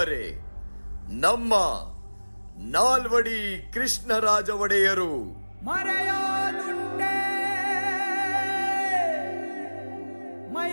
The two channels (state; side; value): inverted; both; correlation -1.00